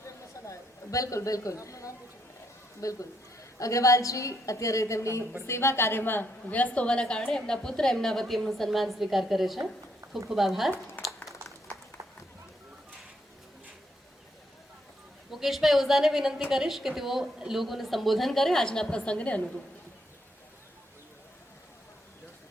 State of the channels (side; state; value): both; normal; correlation 0.76